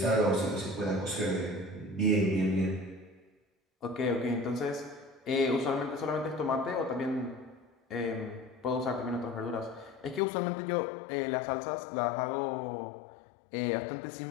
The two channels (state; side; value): drops out; right; at 10.2 s